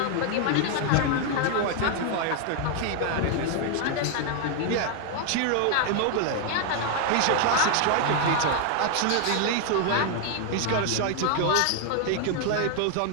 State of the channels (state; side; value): different; both; correlation 0.00